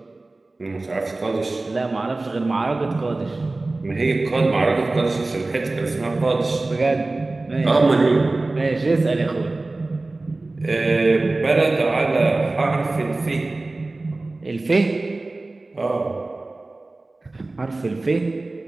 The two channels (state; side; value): quieter; left; 3.1 dB